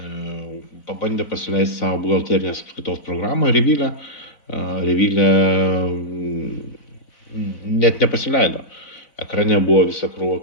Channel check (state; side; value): late; right; 4.0 ms